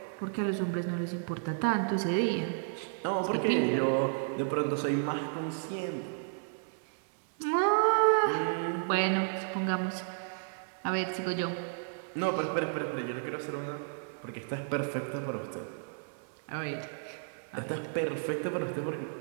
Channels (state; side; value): silent; left; digital silence